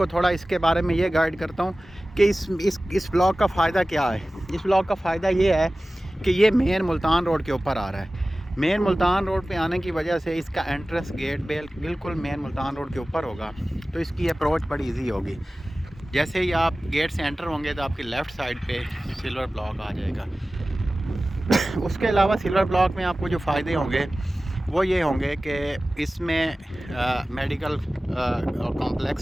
थोड़ा इसके बारे में ये गाइड करता हूँ कि इस ब्लॉक का फ़ायदा क्या है। इस ब्लॉक का फ़ायदा ये है कि ये मेन मुल्तान रोड के ऊपर आ रहा है। मेन मुल्तान रोड पे आने की वजह से इसका एंट्रेंस गेट बिल्कुल मेन मुल्तान रोड के ऊपर होगा, तो इसकी अप्रोच बड़ी इजी होगी। जैसे ही आप गेट से एंटर होंगे तो आपकी लेफ़्ट साइड पे सिल्वर ब्लॉक आ जाएगा। उसके अलावा सिल्वर ब्लॉक में आपको जो फ़ायदे होंगे वो ये होंगे कि इसमें मेडिकल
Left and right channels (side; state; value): both; normal; correlation 0.97